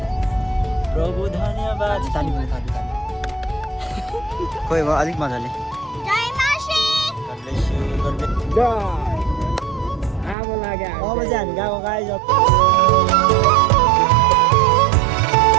प्रभु धन्यवाद ताली पनि ताली खोइ भयो अलिक मजाले अब चाहिँ हामी गएको गाई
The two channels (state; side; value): drops out; left; at 10.4 s